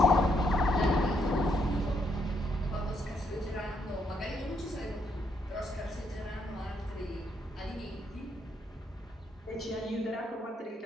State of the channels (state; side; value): normal; both; correlation 0.75